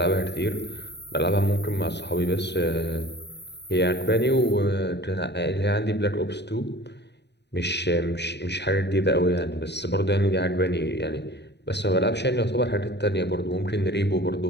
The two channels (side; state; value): right; late; 0.50 ms